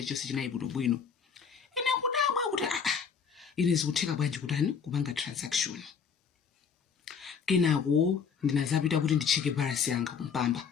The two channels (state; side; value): quieter; right; 6.5 dB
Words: chonse chinayi bwinobwino. Ine kudabwa kuti ine zikutheka bwanji kutani kupanga transaction. Kenako ndinazapita kuti ndicheke balance yanga kumpamba.